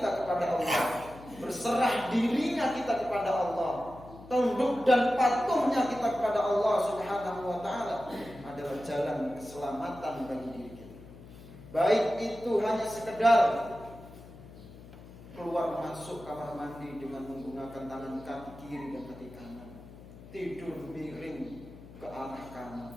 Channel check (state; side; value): noise; left; hum, 18 dB below the sound